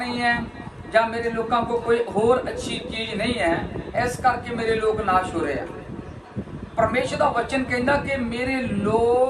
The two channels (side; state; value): both; identical; correlation 1.00